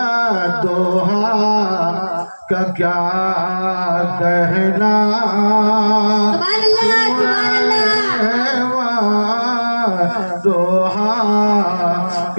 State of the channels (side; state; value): both; inverted; correlation -1.00